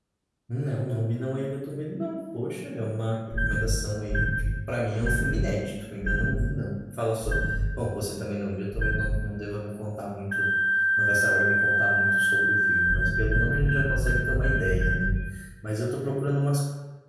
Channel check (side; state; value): both; identical; correlation 1.00